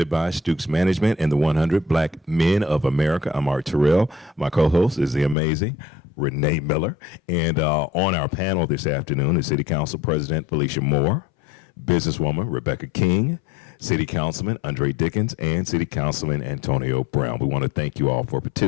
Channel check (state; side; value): drops out; right; at 5.4 s